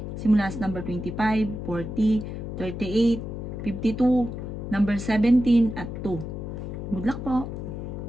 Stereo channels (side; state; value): left; noise; hum, 6 dB below the sound